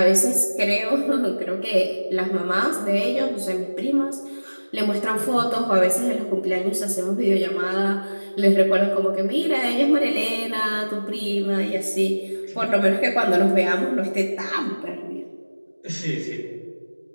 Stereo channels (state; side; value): inverted; both; correlation -1.00